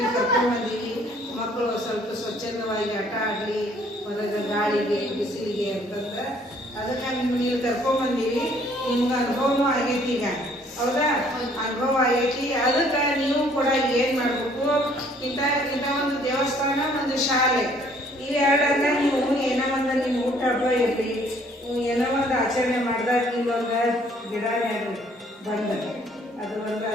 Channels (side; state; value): both; normal; correlation 0.61